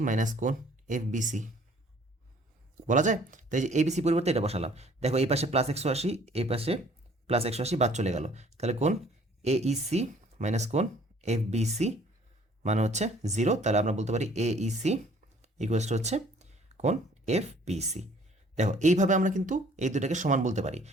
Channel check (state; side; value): normal; both; correlation 0.57